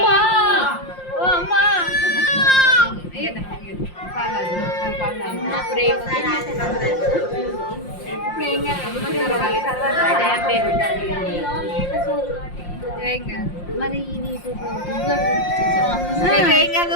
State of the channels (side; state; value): right; late; 5.7 ms